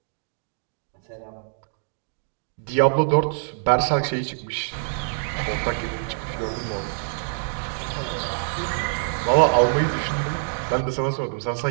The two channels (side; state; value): left; silent; digital silence